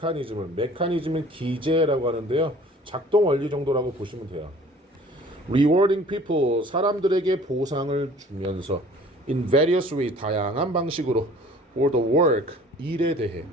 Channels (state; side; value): normal; both; correlation 0.50